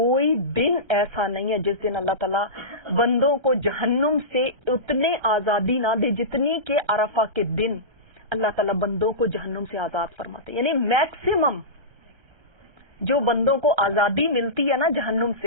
دن ایسا نہیں ہے جس دن اللہ تعالیٰ بندوں کو جہنم سے اتنے آزادی نہ دے جتنی کہ عرفہ کے دن اللہ تعالیٰ بندوں کو جہنم سے آزاد فرماتے ہیں. یعنی میکسیمم جو بندوں کو آزادی ملتی ہے نا جہنم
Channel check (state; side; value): late; left; 1.3 ms